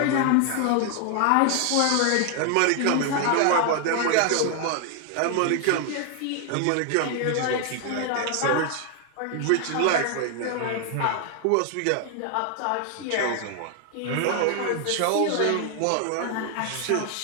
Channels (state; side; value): different; both; correlation 0.00